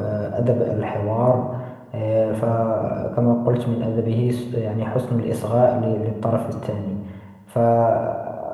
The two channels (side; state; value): both; identical; correlation 1.00